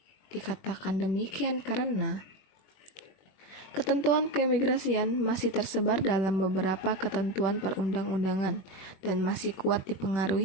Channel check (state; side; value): late; right; 21 ms